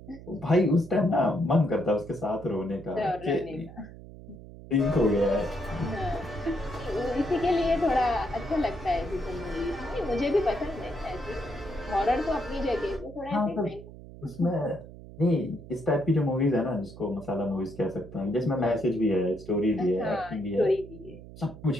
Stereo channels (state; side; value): noise; right; hum, 16 dB below the sound